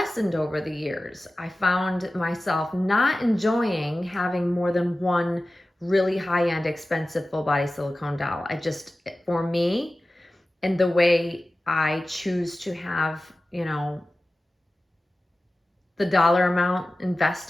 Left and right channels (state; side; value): normal; both; correlation 0.96